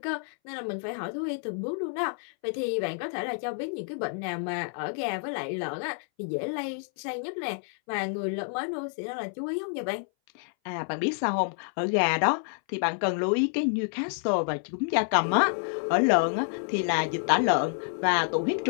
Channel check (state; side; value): silent; right; 59 dB below the other